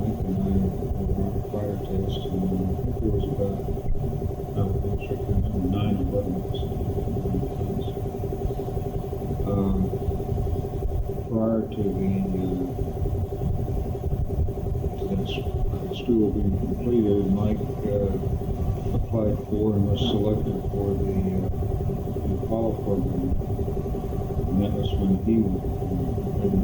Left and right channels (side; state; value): both; identical; correlation 1.00